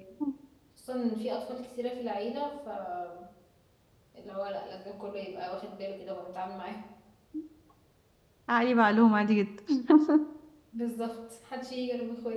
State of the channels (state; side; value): identical; both; correlation 1.00